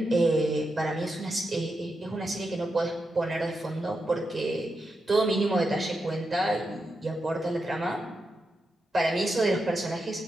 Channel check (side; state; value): both; normal; correlation 0.86